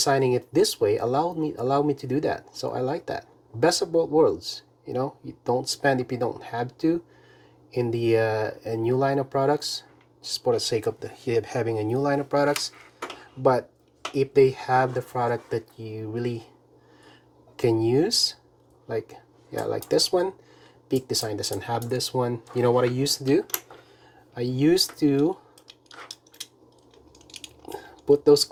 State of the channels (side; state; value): both; identical; correlation 1.00